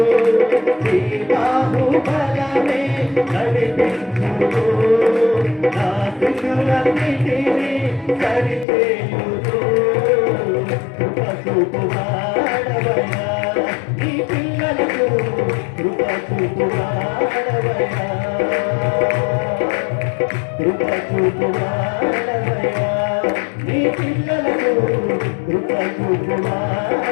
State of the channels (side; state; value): right; drops out; at 8.7 s